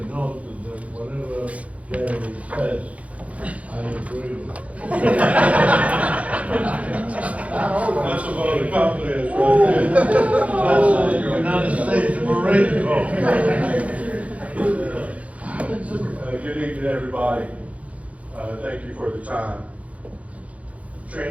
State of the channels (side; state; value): left; late; 0.066 ms